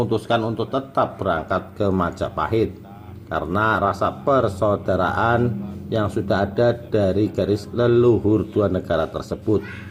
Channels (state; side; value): identical; both; correlation 1.00